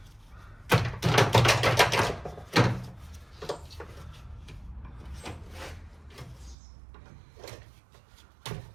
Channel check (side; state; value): left; drops out; at 6.6 s